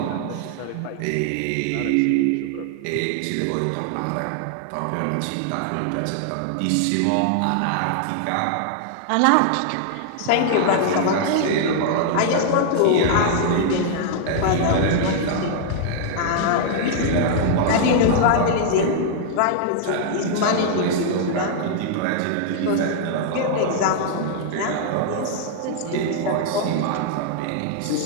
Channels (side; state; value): both; different; correlation -0.01